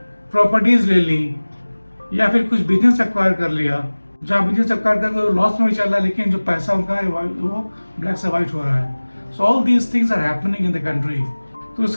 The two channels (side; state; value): both; inverted; correlation -1.00